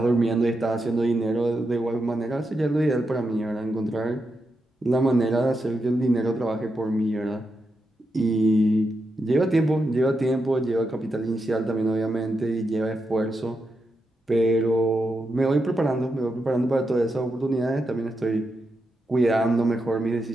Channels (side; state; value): both; normal; correlation 0.86